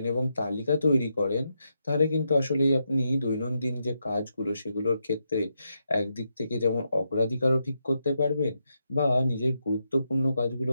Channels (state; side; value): inverted; both; correlation -0.82